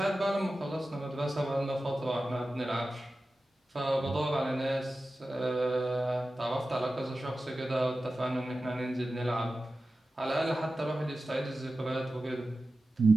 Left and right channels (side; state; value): both; normal; correlation 0.94